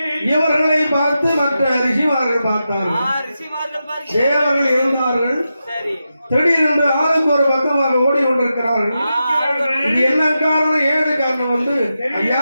இவர்களை பார்த்து மற்ற ரிஷிமார்கள் பார்த்தார்கள். தேவர்கள் இருந்தார்கள். திடீரென்று ஆளுக்கு ஒரு பக்கமாக ஓடிக்கொண்டிருக்கிறார்கள். இது என்ன காரணம், ஏழு காரணம் வந்து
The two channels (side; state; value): both; inverted; correlation -0.89